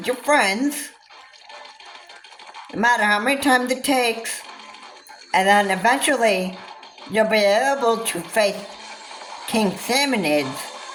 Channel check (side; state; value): both; identical; correlation 1.00